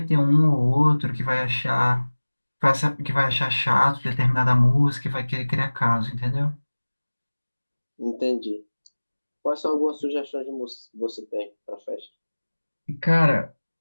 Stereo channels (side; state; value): both; inverted; correlation -1.00